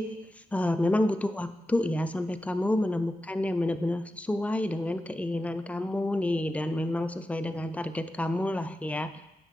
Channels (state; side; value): normal; both; correlation 0.92